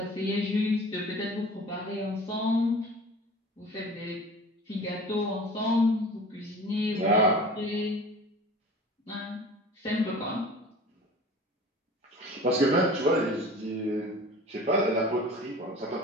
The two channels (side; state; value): both; normal; correlation 0.41